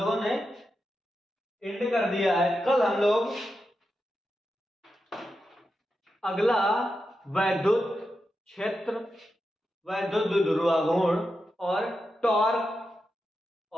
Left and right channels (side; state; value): both; normal; correlation 0.88